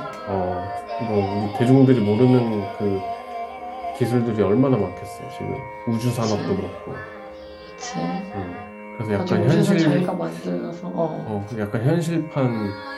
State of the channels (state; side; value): identical; both; correlation 1.00